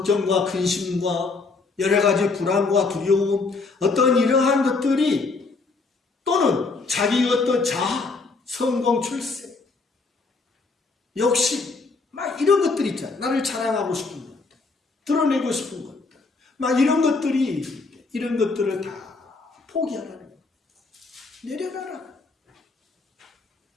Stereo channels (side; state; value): right; quieter; 4.0 dB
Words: 근심과 여러 가지 불안과 두려움, 어떤 이러한 것들이 또는 자기 어떤 자아, 성공, 출세, 욕심, 막 이런 것들 있잖아. 나를 자랑하고 싶은 것들, 드러내고 싶은 것들, 막 이런 것들이, 이런 것들을 다 포기하라는 거야. 내려놔라.